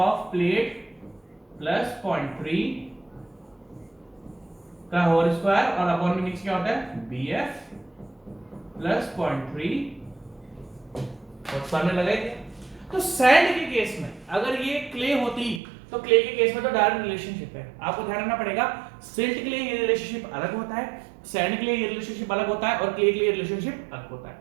प्लेट प्लस 0.3 का होल स्क्वायर, और अपॉन में नीचे क्या होता है? बीएफ प्लस 0.3 और सामने लगाएंगे। तो सैंड के केस में अगर ये क्ले होती तो क्ले के केस में तो डायरेक्ट रिलेशनशिप है। आपको ध्यान रखना पड़ेगा, सिल्ट के लिए ये रिलेशनशिप अलग होता है, सैंड के लिए ये रिलेशनशिप अलग होता है, और क्ले के लिए रिलेशनशिप अलग होता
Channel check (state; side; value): drops out; left; at 15.6 s